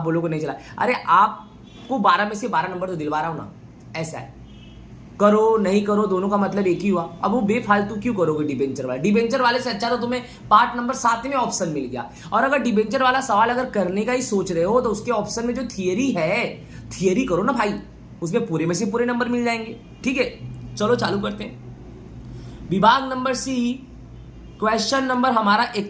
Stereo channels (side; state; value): both; identical; correlation 1.00